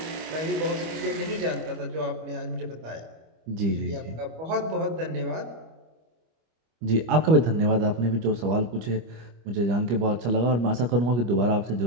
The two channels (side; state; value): left; late; 25 ms